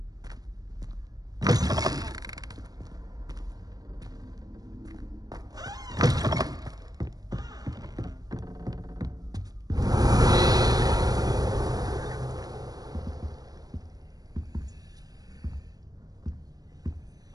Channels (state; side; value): late; left; 0.18 ms